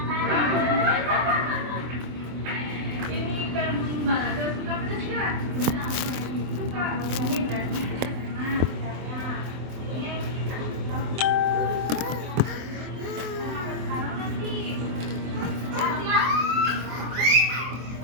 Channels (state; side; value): late; left; 24 ms